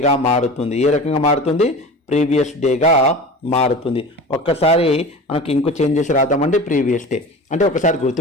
మారుతుంది. ఏ రకంగా మారుతుంది? ప్రీవియస్ డేగా మారుతుంది. ఒక్కసారి మనకి ఇంకో చేంజ్ చేసి రాద్దామండి. ప్రీవియస్ డే అంటే ఒకసారి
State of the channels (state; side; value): normal; both; correlation 0.34